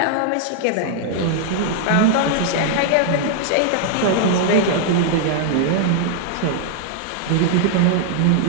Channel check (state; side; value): different; both; correlation 0.00